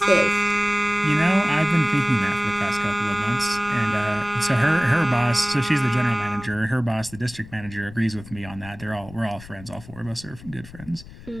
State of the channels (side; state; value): left; noise; rumble, 18 dB below the sound